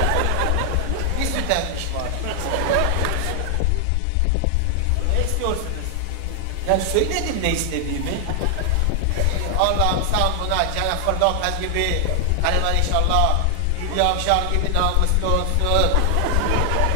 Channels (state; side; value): different; both; correlation 0.00